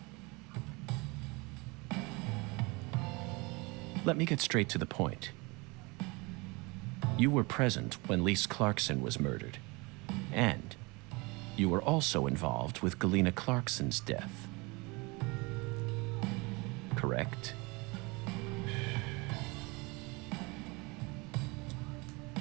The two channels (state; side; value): quieter; left; 26.6 dB